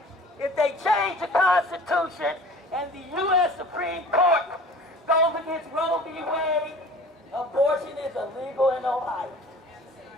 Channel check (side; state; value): both; normal; correlation 0.44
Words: they change the Constitution and the U.S. Supreme Court goes against Roe v. Wade, abortion is illegal in Ohio.